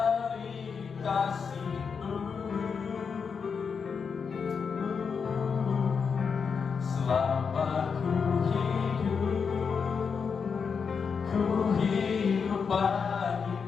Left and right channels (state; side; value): quieter; right; 5.9 dB